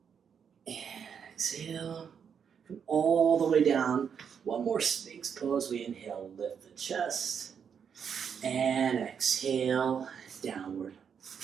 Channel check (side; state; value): left; quieter; 7.2 dB